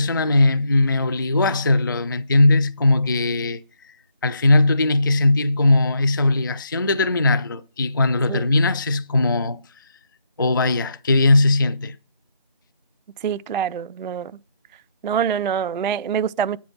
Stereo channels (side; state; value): both; inverted; correlation -0.76